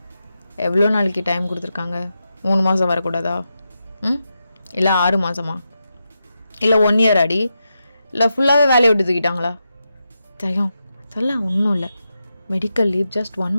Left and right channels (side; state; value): both; inverted; correlation -0.88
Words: எவ்வளோ நாளைக்கு டைம் கொடுத்துருக்காங்க? 3 மாதம் வரக்கூடாதா? இல்லை 6 மாதமா? இல்லை 1 இயர் அடி? இல்லை ஃபுல்லாகவே வேலையை விட்டு தூக்கிட்டாங்களா? தயம் அதெல்லாம் ஒன்றும் இல்லை, மெடிக்கல் லீவ் ஜஸ்ட் 1